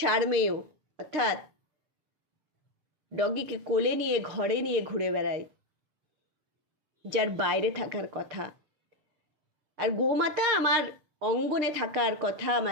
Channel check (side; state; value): left; late; 6.6 ms